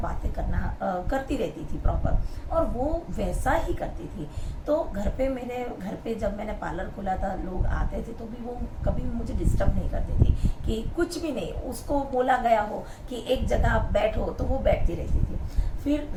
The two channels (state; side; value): identical; both; correlation 1.00